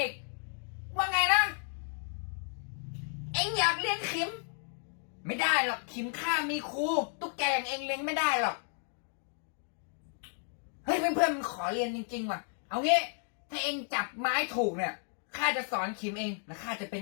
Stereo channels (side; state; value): right; silent; 56 dB below the other